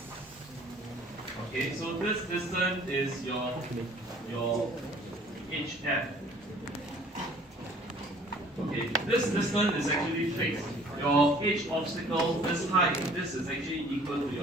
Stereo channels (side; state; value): both; normal; correlation 0.54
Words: Okay, so this distance is your HF. Okay, this distance is actually fixed. Your H obstacle, this height, this is actually equal to